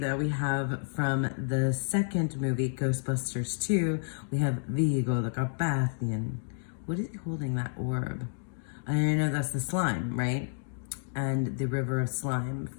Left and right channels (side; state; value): right; silent; digital silence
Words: we have from the second movie, Ghostbusters 2, we have Vigo the Carpathian. What is he holding, that orb? I know that's the slime, right? And the river of slime